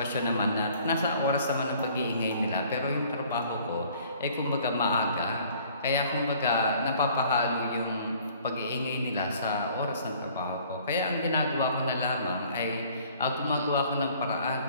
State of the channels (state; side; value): inverted; both; correlation -0.55